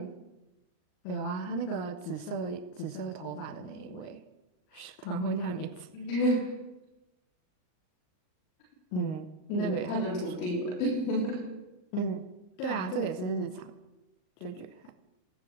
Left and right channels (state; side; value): late; right; 39 ms